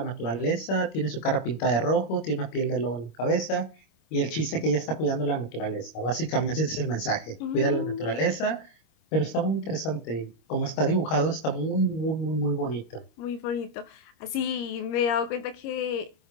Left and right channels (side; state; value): right; late; 26 ms